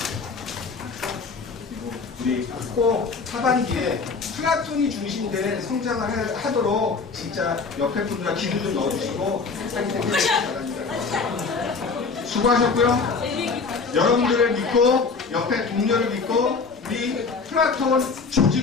그리고 우리 꼭 하반기에 플라톤이 중심된 성장을 하도록 진짜 옆에 분들과 기도 좀 넣어주시고 하기 바랍니다. 수고하셨고요. 여러분들을 믿고 옆에 동료를 믿고 우리 플라톤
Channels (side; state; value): right; quieter; 4.7 dB